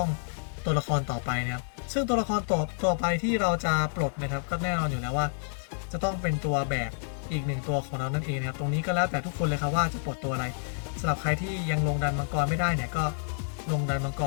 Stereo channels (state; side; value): silent; right; digital silence